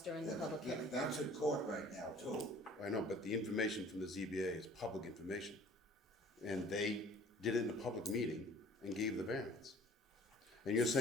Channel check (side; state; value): both; normal; correlation 0.51